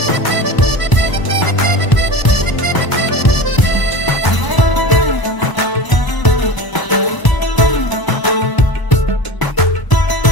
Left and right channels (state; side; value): late; right; 1.0 ms